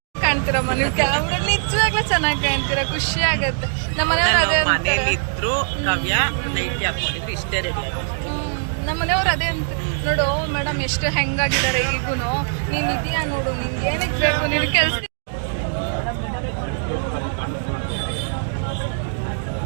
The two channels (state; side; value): silent; left; digital silence